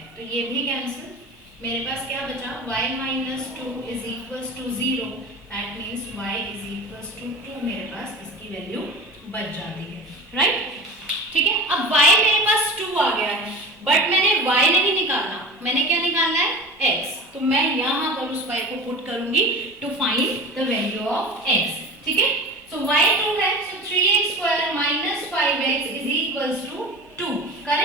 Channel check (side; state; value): both; normal; correlation 0.34